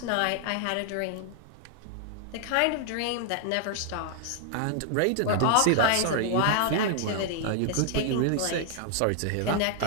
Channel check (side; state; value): both; different; correlation 0.00